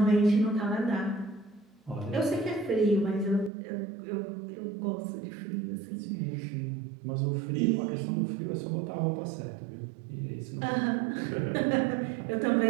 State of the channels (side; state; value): left; drops out; at 3.5 s